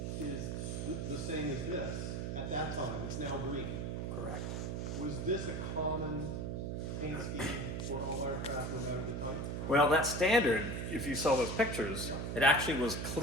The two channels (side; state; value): right; noise; hum, 3 dB below the sound